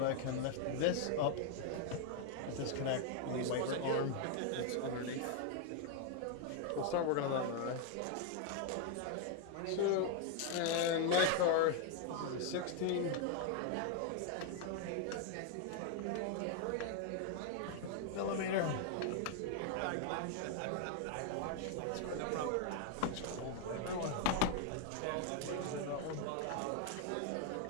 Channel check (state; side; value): different; both; correlation 0.01